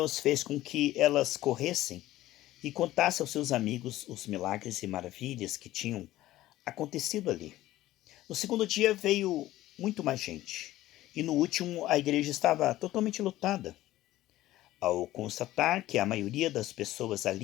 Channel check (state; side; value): quieter; right; 15.5 dB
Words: fez com que elas corressem e contassem aos seus amigos os milagres e maravilhas que tinham acontecido ali. No segundo dia veio muito mais gente, e no último a igreja estava totalmente lotada. Ao constatar que a maioria das pessoas